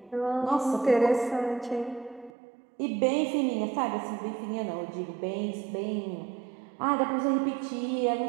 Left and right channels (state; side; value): drops out; left; at 2.3 s